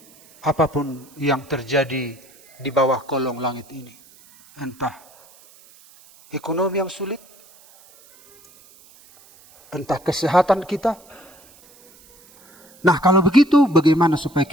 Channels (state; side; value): noise; right; hiss, 26 dB below the sound